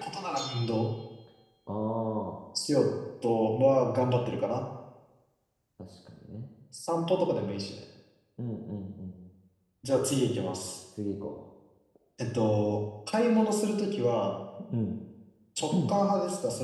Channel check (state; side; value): identical; both; correlation 1.00